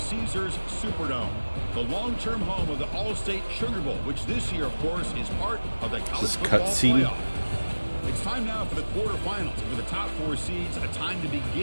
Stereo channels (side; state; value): both; inverted; correlation -1.00